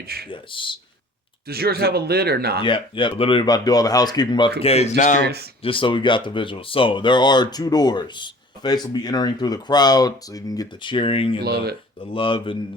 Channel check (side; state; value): both; normal; correlation 0.48